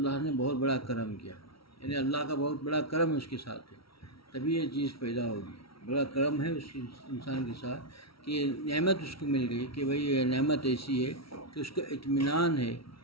نے بہت بڑا کرم کیا، یعنی اللہ کا بہت بڑا کرم اس کے ساتھ ہے، تبھی یہ چیز پیدا ہوگی۔ بڑا کرم ہے اس انسان کے ساتھ کہ یہ نعمت اس کو مل گئی کہ بھئی یہ نعمت ایسی ہے کہ اس کو اطمینان ہے،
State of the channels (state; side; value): late; right; 0.75 ms